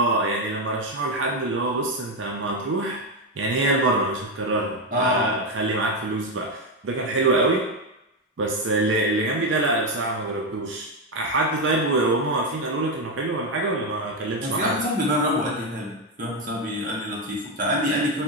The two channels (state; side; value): normal; both; correlation 0.08